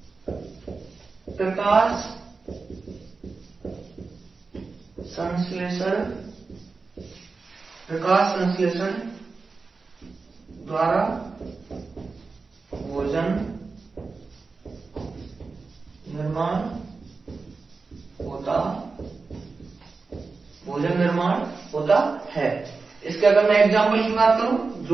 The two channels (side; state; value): left; quieter; 4.3 dB